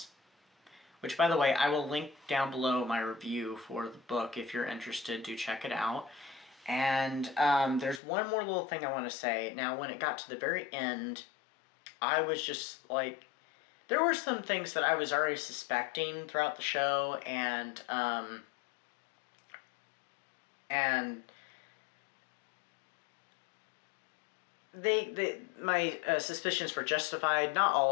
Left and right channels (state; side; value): drops out; right; at 8.0 s